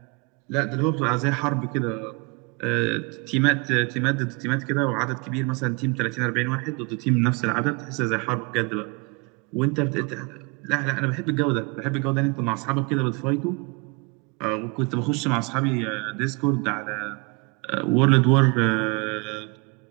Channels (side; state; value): left; quieter; 30.2 dB